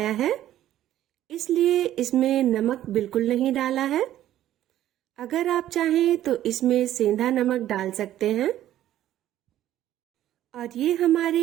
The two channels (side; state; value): left; quieter; 12.7 dB